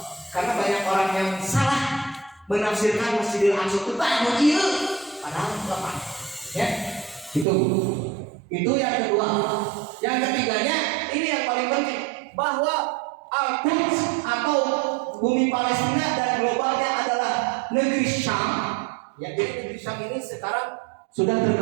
Karena banyak orang yang salah menafsirkan Masjidil Aqsa itu tak begitu, padahal apa? Ya, itu. itu yang kedua. Yang ketiganya ini yang paling penting bahwa Al-Quds atau bumi Palestina dan globalnya adalah negeri Syam. Ya, jadi negeri Syam ini sekarang sudah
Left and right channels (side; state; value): left; drops out; at 7.5 s